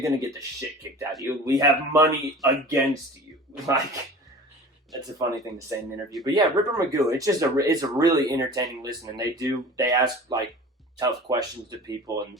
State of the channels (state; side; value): normal; both; correlation 0.40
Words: gonna get the shit kicked out of you. We have money against you, like. That's a funny thing to say in an interview. But yeah, Ripper Magoo, it's a really entertaining listen. And they ask like tough questions to people.